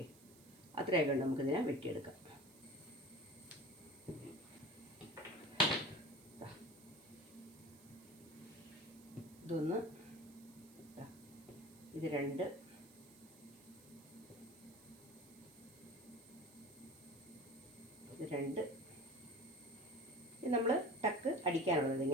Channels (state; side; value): noise; right; hiss, 23 dB below the sound